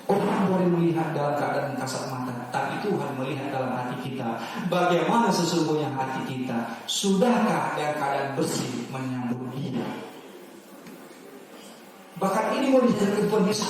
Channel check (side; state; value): both; identical; correlation 1.00